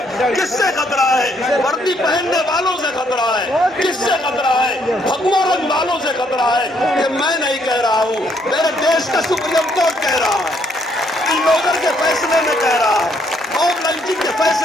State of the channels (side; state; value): both; normal; correlation 0.70